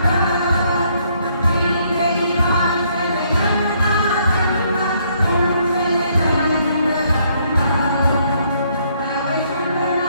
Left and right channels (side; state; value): both; inverted; correlation -0.69